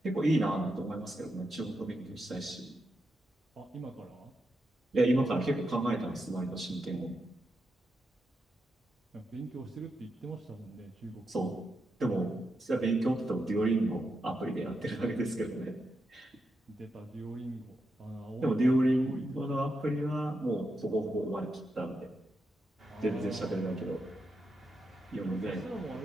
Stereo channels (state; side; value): normal; both; correlation 0.85